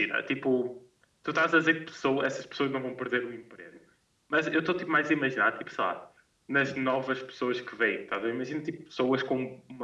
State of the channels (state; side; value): identical; both; correlation 1.00